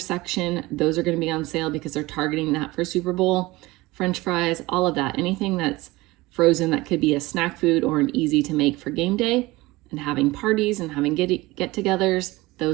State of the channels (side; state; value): left; quieter; 20.6 dB